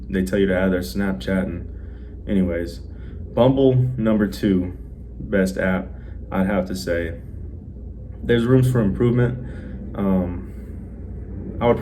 They tell you to add their Snapchat, and anyways, Bumble, number 2 best app, I'd have to say. There's rooms for improvement. I would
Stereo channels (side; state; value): both; identical; correlation 1.00